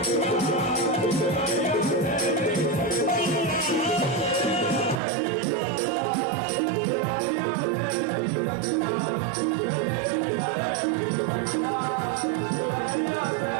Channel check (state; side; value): drops out; left; at 5.0 s